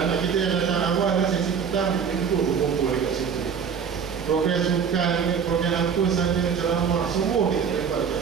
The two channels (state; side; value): quieter; left; 6.8 dB